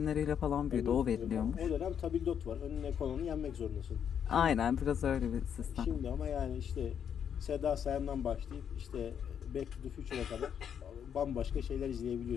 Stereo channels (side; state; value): right; quieter; 8.3 dB